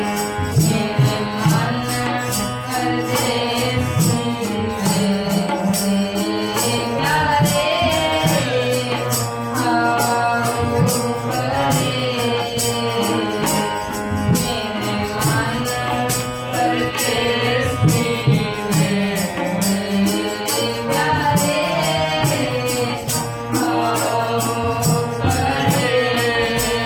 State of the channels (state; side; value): identical; both; correlation 1.00